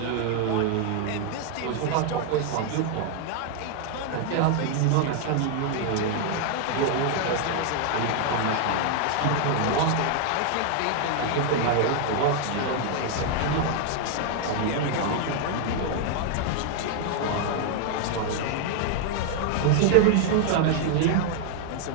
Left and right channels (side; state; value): both; different; correlation 0.00